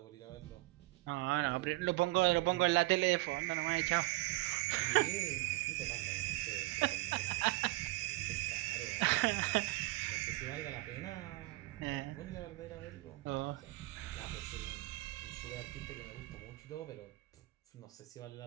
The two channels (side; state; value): left; quieter; 20.3 dB